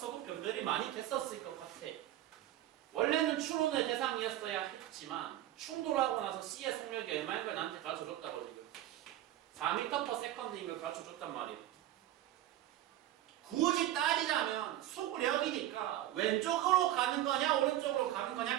변별이 많이 됐었을 것 같아. 원래는 추론의 대상이었어야 했지만 충돌하고 나서 C의 속력이 얼마인 걸 나한테 가르쳐줬다고 지금 4m/s인 걸 가르쳐줬단 말이야. 굳이 따지자면 속력이니까 왼쪽으로 가는 거냐 오른쪽으로 가는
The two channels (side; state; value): left; quieter; 13.5 dB